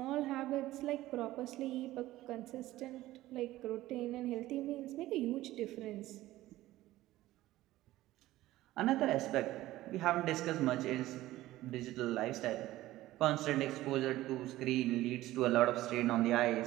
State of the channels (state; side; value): quieter; left; 16.1 dB